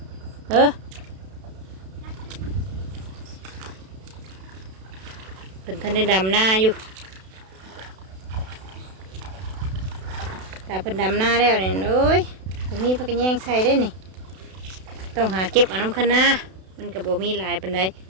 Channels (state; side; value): late; left; 32 ms